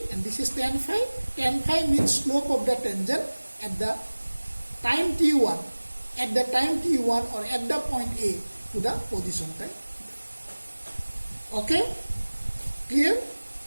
and this is tan phi. Tan phi means slope of the tangent at the time t1, or at the point A to the position time. Okay? Clear?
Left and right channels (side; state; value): both; inverted; correlation -1.00